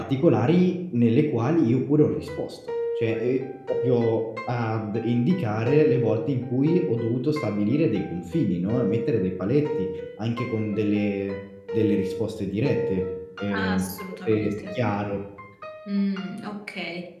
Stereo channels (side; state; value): both; identical; correlation 1.00